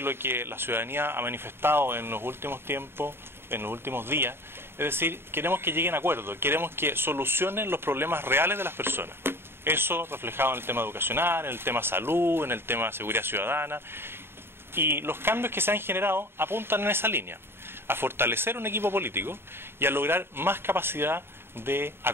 lo que la ciudadanía ha manifestado en los últimos tiempos, en los últimos días, es decir, queremos que lleguen a acuerdos, queremos que solucionen los problemas reales de las personas. Eso reflejado en el tema educacional, en el tema salud, en el tema seguridad ciudadana. Y los cambios que se han generado apuntan en esa línea, a fortalecer un equipo político y a lograr más capacidad de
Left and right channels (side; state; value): left; late; 0.11 ms